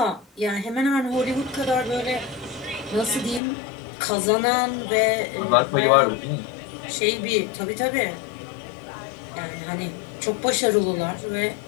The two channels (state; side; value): drops out; right; at 3.4 s